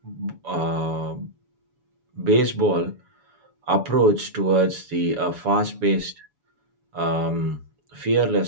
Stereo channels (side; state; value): left; late; 7.1 ms